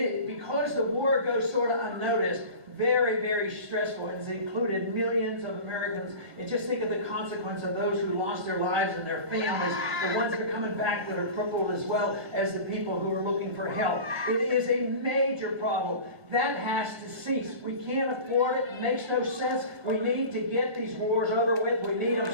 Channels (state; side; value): late; left; 1.6 ms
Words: because the war goes sort of unnoticed, very, very stressful. It's included millions of Americans. And just think of the consequence of those who lost their lives and their families, the ones that are coming back that are crippled, as well as the people who are looking for help. It is a major problem. That has to cease. We can't afford it. It makes no sense. We need to get these wars over with. We need them